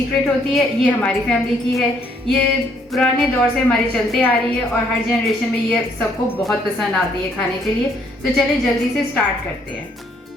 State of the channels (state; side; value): normal; both; correlation 0.67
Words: होती है, ये हमारी फैमिली की है। ये पुराने दौर से हमारी चलते आ रही है और हर जनरेशन में ये सबको बहुत पसंद आती है खाने के लिए। तो चलिए जल्दी से स्टार्ट करते हैं।